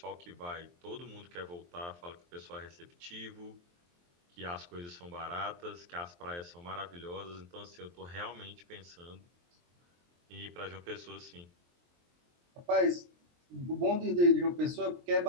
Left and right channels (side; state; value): left; late; 23 ms